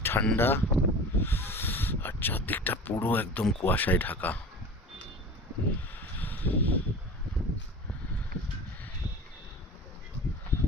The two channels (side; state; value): both; normal; correlation 0.36